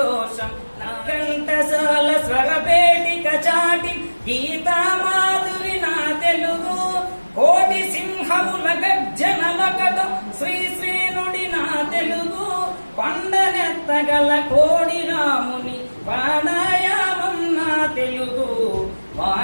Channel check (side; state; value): both; inverted; correlation -1.00